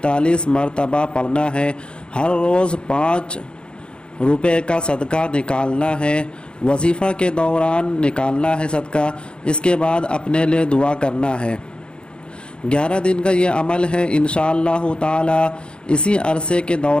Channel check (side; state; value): right; late; 0.053 ms